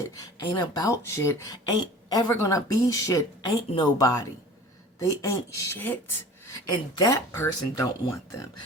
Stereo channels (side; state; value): both; normal; correlation 0.42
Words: ain't about shit, ain't ever gonna be shit, ain't nobody. They ain't shit. And that person don't want them.